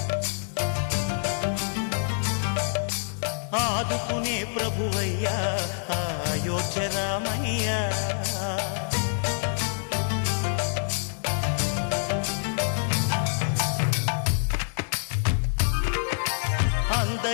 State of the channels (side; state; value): right; silent; digital silence